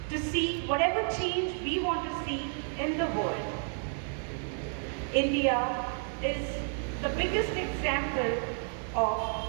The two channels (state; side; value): silent; left; 57 dB below the other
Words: to see whatever change we want to see in the world. India is the biggest example